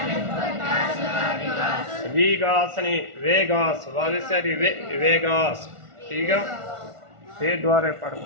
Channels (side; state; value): left; late; 1.4 ms